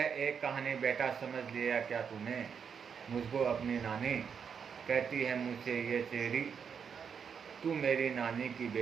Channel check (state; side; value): quieter; left; 6.9 dB